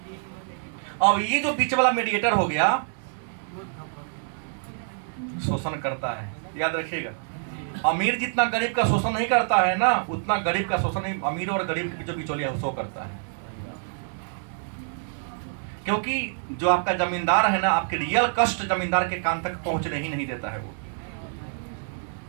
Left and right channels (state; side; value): silent; left; digital silence